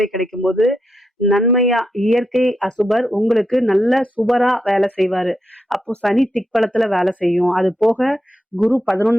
கிடைக்கும் போது நன்மையா இயற்கை அசுபர் உங்களுக்கு நல்ல சுபரா வேலை செய்வாரு. அப்போ சனி திக்பலத்துல வேலை செய்யும். அது போக குரு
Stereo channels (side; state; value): both; normal; correlation 0.84